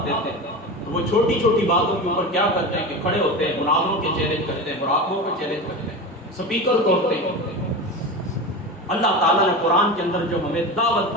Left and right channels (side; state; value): both; normal; correlation 0.26